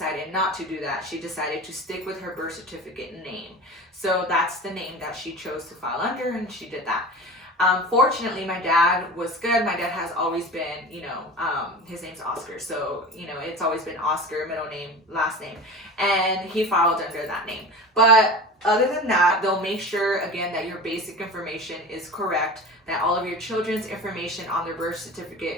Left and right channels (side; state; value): both; normal; correlation 0.33